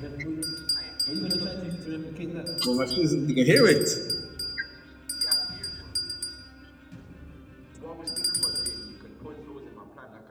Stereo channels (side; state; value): both; identical; correlation 1.00